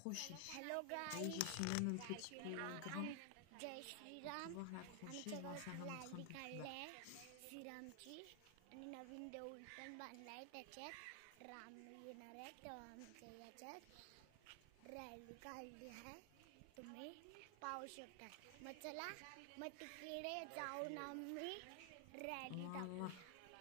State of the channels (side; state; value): both; different; correlation 0.00